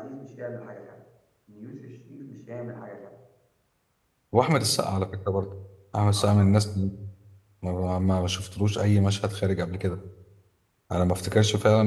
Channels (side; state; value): both; identical; correlation 1.00